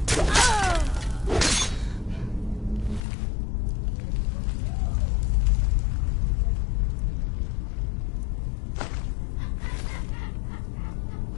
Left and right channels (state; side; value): drops out; right; at 3.0 s